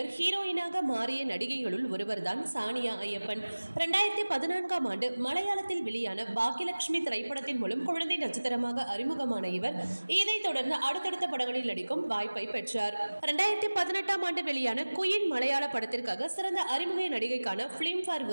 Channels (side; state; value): both; inverted; correlation -1.00